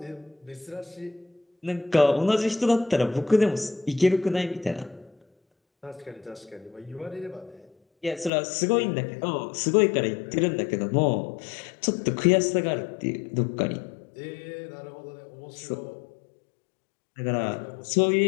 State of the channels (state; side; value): drops out; right; at 8.3 s